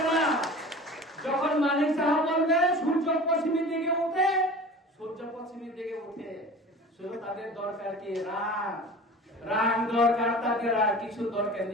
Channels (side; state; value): both; normal; correlation 0.38